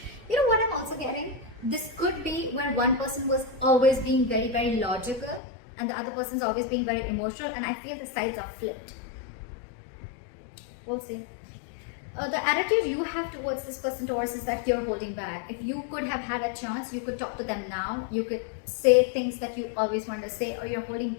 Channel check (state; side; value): drops out; right; at 5.4 s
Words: You know what I'm also getting? This could be where one person was always being very logical, and the other person's always being very emotional, and I feel the sides are flipped. We'll see. The attitude you have towards this person, Taurus, is that you're holding back. If you could have had a chance, you could talk to them now. You could say things that you always wanted to say, or you're holding